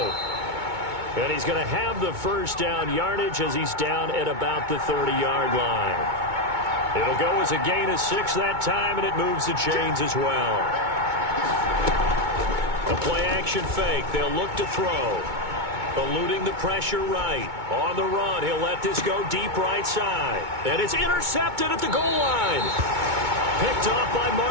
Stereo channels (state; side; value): late; left; 2.2 ms